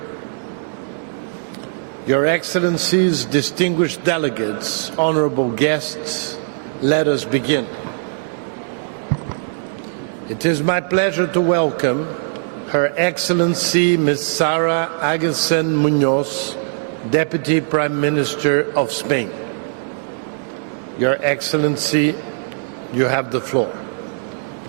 Your Excellencies, distinguished delegates, honorable guests, let us begin. It is my pleasure to welcome Her Excellency Ms. Sara Agustín Muñoz, Deputy Prime Minister of Spain. Your Excellency, you have the floor.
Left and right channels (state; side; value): silent; left; digital silence